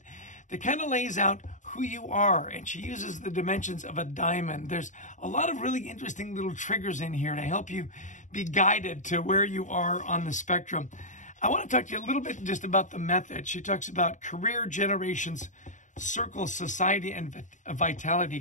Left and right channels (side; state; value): right; late; 0.36 ms